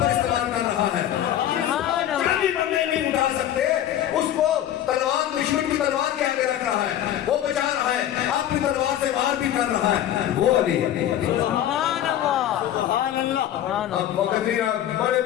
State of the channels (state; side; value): quieter; right; 11.6 dB